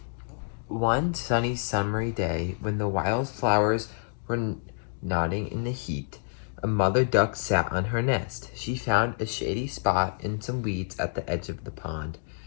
One sunny summery day, when the wild flowers were nodding in the heat, a mother duck sat on her nest. She found a shady spot in some weeds at the edge of the pond.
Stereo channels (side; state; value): right; silent; digital silence